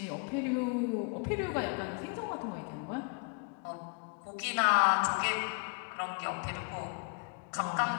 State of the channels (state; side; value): quieter; right; 34.7 dB